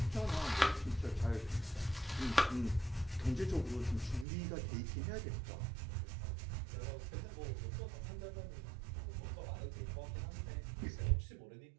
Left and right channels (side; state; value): left; drops out; at 4.2 s